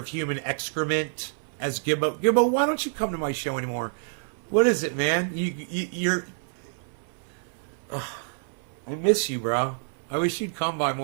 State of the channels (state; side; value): silent; left; 57 dB below the other